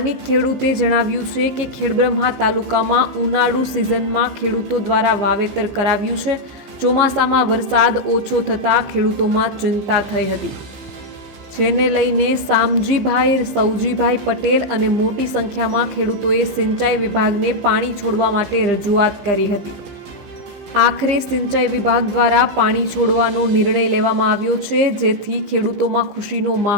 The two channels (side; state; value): left; late; 15 ms